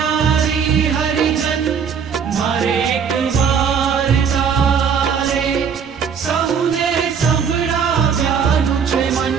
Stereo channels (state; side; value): quieter; left; 6.8 dB